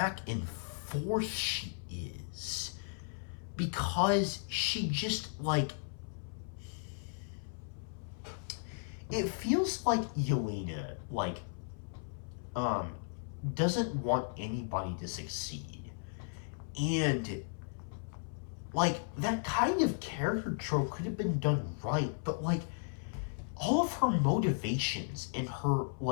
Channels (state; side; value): silent; right; 54 dB below the other